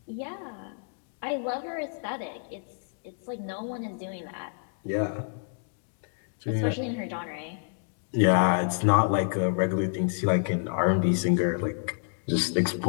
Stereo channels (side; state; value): right; silent; digital silence